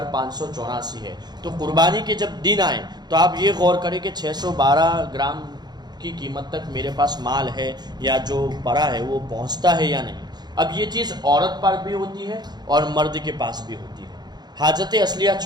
ہے۔ تو قربانی کے جب دن آئے تو آپ یہ غور کریں کہ 612 گرام کی قیمت تک میرے پاس مال ہے یا جو پڑا ہے وہ پہنچتا ہے یا نہیں۔ اب یہ چیز عورت پر بھی ہوتی ہے اور مرد کے پاس بھی ہوتی ہے، حاجت اصلیہ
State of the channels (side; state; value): left; late; 0.20 ms